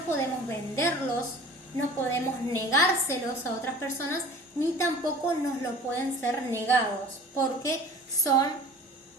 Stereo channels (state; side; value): normal; both; correlation 0.45